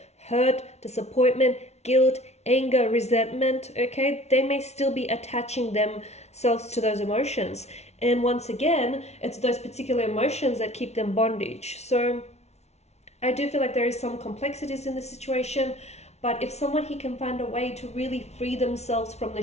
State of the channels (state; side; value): late; right; 0.31 ms